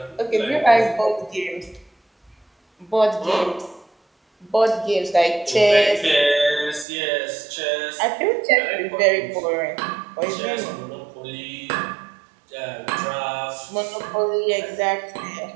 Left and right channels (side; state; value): left; drops out; at 6.9 s